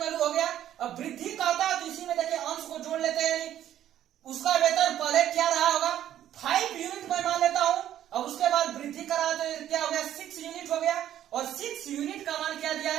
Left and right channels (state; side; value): quieter; left; 11.5 dB